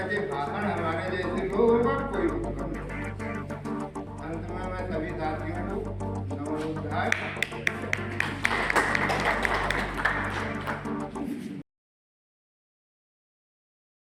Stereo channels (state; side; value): identical; both; correlation 1.00